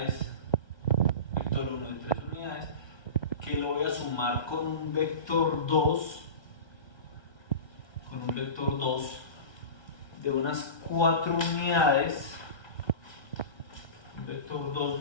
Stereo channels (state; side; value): late; right; 1.2 ms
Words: vector 1 de 3 unidades, que lo voy a sumar con un vector 2, de unas 4 unidades, un vector